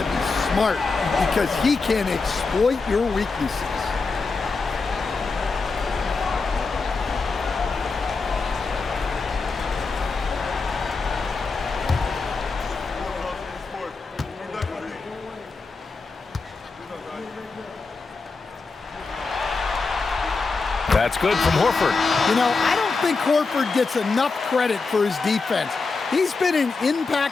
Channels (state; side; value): quieter; right; 4.2 dB